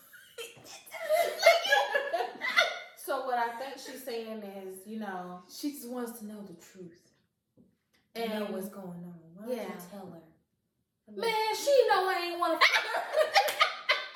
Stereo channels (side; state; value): both; identical; correlation 1.00